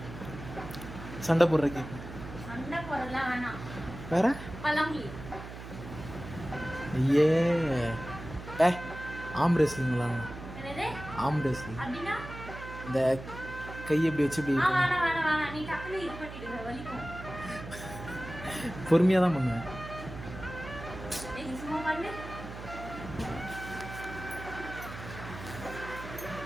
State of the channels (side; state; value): right; noise; hum, 11 dB below the sound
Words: சண்டை போடுற கேம். சண்டை போடலாம் வேணாம். வேற பழமொழி. ஐயே டே ஆம் ரெஸ்லிங் விளாட்லாம். என்னது ஆம் ரெஸ்லிங். அப்படின்னா இந்த கை எப்படி வச்சு இப்படி வேணாம் வேணாம் வேணாம். நீ டக்குனு இது பண்ணிடுங்க, வலிக்கும். பொறுமையாக தான் பண்ணுவேன். நீ சும்மா பண்ணு.